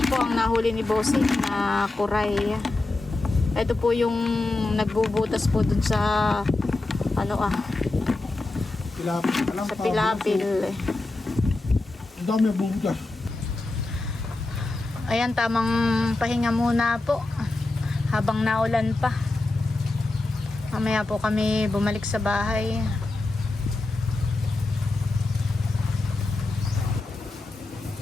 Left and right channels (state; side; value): quieter; right; 3.1 dB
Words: po ang nahuli ni Bossing na kuray. Ito po yung nagbubutas po dun sa sa pilapil. Ang dami ang bubutas. Ayan, tamang pahinga muna po habang naulan pa. Mamaya po kami bumalik sa bahay.